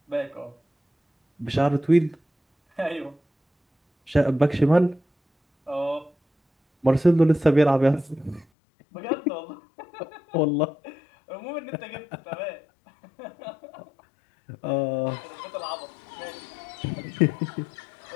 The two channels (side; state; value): right; drops out; at 8.5 s